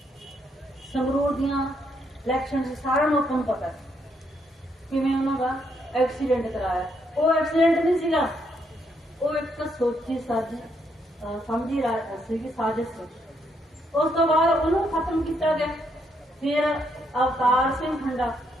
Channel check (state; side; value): normal; both; correlation 0.75